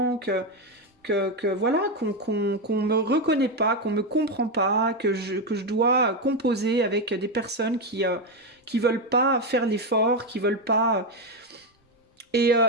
que voilà, qu'on me reconnaît pas, qu'on me comprend pas, que je dois composer avec des personnes qui veulent pas faire l'effort, qui veulent pas. Et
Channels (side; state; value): both; normal; correlation 0.09